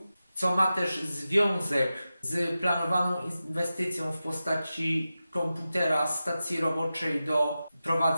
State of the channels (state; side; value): inverted; both; correlation -0.93